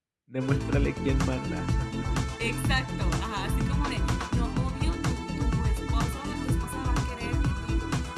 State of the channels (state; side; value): identical; both; correlation 1.00